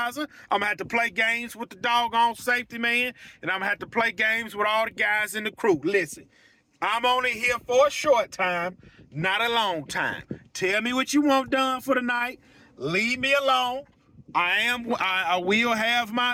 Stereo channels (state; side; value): identical; both; correlation 1.00